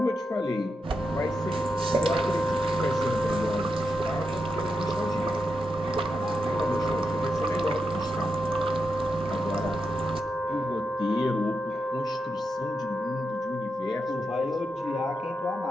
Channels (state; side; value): normal; both; correlation 0.86